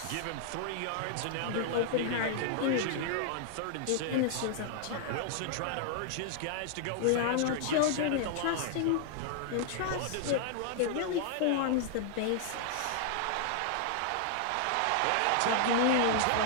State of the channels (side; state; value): both; different; correlation 0.00